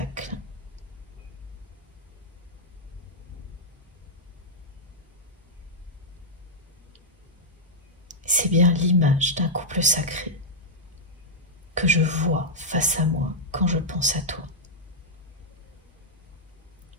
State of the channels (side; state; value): both; normal; correlation -0.06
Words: c'est bien l'image d'un couple sacré que je vois face à moi quand je pense à toi.